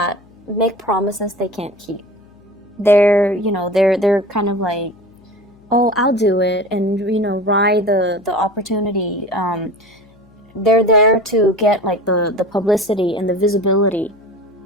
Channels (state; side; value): noise; left; hum, 29 dB below the sound